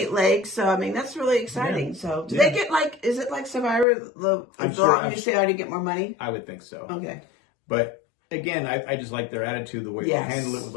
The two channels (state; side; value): drops out; right; at 3.9 s